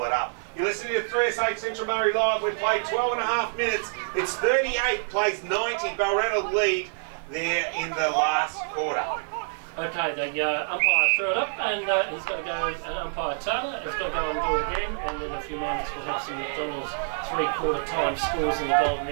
it up. You're listening to 3SH Central Murray Live. We've played 12.5 minutes. It's 38, plays 90. Balranald lead there in the last quarter. Okay, the umpire threw it up, and he's got to go, and umpire Taylor has got to go and do it again, and in a few moments we'll have some McDonald's 3/4 time scores in the Golden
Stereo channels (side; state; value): left; silent; digital silence